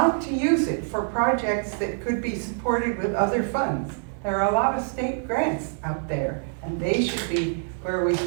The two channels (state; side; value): silent; left; 61 dB below the other